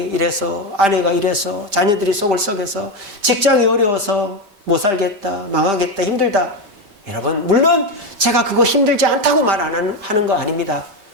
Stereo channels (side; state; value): left; late; 5.1 ms